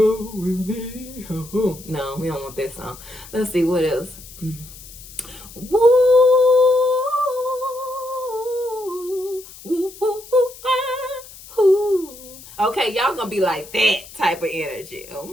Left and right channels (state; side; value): noise; left; hiss, 18 dB below the sound